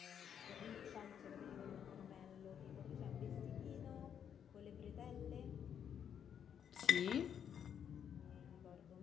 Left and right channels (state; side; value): quieter; right; 8.5 dB